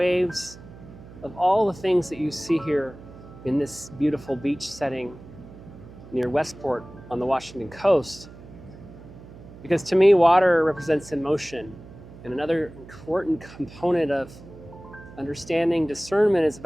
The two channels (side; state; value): right; noise; hum, 18 dB below the sound